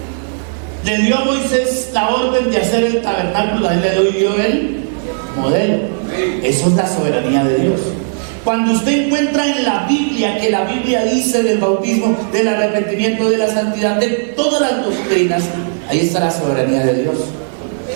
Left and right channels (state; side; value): silent; left; 69 dB below the other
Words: le dio a Moisés la orden de hacer el tabernáculo, a él le dio el modelo. Eso es la soberanía de Dios. Cuando usted encuentra en la Biblia que la Biblia dice del bautismo, del arrepentimiento, de la santidad, de todas las doctrinas, ahí está la soberanía de Dios.